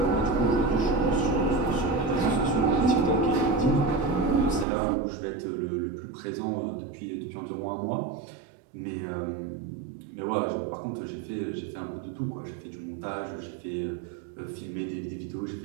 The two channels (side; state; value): left; drops out; at 4.7 s